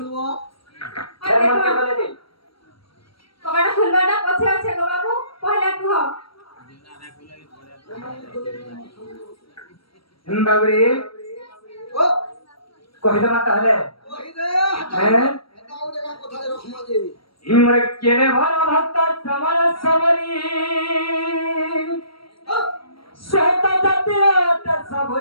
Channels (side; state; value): right; late; 0.75 ms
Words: মনকে বলে দিন কবাটা খুলবাটা পছে আছে গো বাবু পহলা কুহ বাবুরে ও কহিলে মা তাহলে ওই দে হ্যাঁ এটা ওরে কোথায় রকম আছে ইমরে কেড়ে ভরা ভক্ত সমর সমরি শ্বেত জাতির অতে